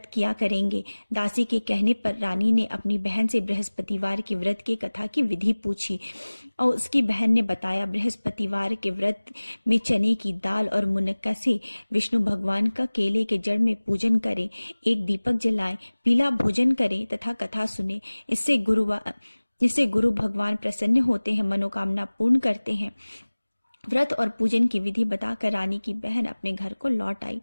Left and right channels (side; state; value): both; inverted; correlation -1.00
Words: किया करेंगे। दासी के कहने पर रानी ने अपनी बहन से बृहस्पतिवार की व्रत की कथा की विधि पूछी और उसकी बहन ने बताया, बृहस्पतिवार के व्रत में चने की दाल और मुनक्का से विष्णु भगवान का केले के जड़ में पूजन करें, एक दीपक जलाएं, पीला भोजन करें तथा कथा सुने। इससे गुरु भगवान प्रसन्न होते हैं, मनोकामना पूर्ण करते हैं। व्रत और पूजन की विधि बताकर रानी की बहन अपने घर को लौट आई।